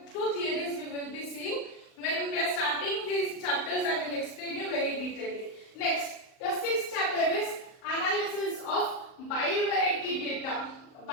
2 theories we will be seeing. When we are starting these chapters, I will explain you very detailedly. Next, the 6th chapter is analysis of bivariate data.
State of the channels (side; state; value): right; late; 38 ms